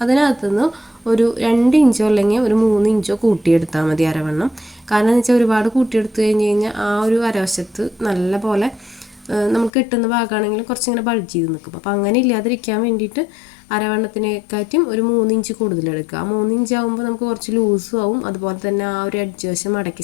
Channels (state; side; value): drops out; right; at 9.7 s